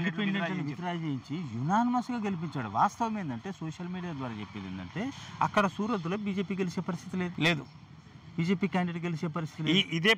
విత్డ్రా చేయించి యునానిమస్గా గెలిపించాడు. వాస్తవం ఏంటంటే సోషల్ మీడియా ద్వారా చెప్పేది ఏంటంటే అక్కడ సూరత్లో బీజేపీ గెలిచే పరిస్థితి లేదు, బీజేపీ క్యాండిడేట్ గెలిచే పరిస్థితి. ఇదే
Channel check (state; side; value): identical; both; correlation 1.00